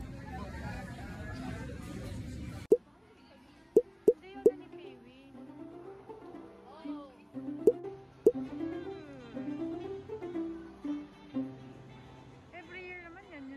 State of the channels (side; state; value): both; identical; correlation 1.00